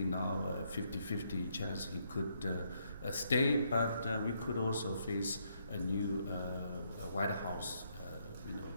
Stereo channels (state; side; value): inverted; both; correlation -0.74